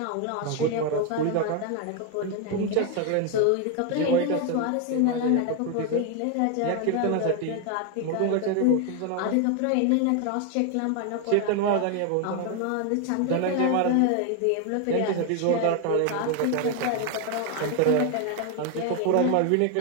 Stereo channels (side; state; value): both; different; correlation 0.01